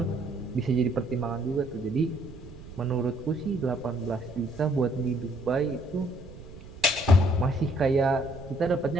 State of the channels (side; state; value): right; noise; rumble, 16 dB below the sound